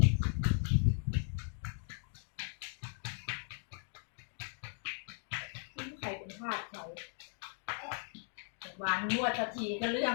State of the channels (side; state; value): right; silent; 53 dB below the other